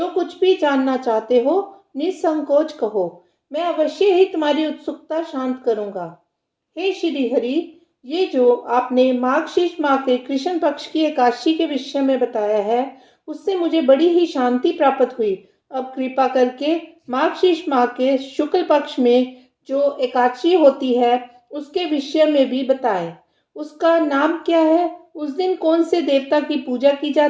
कुछ भी जानना चाहते हो निसंकोच कहो, मैं अवश्य ही तुम्हारी उत्सुकता शांत करूंगा। हे श्री हरि, ये जो आपने माघ माह के कृष्ण पक्ष की एकादशी के विषय में बताया है, उससे मुझे बड़ी ही शांति प्राप्त हुई। अब कृपा करके माघ माह के शुक्ल पक्ष में जो एकादशी होती है उसके विषय में भी बताएं। उसका नाम क्या है, उस दिन कौन से देवता की पूजा की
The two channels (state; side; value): identical; both; correlation 1.00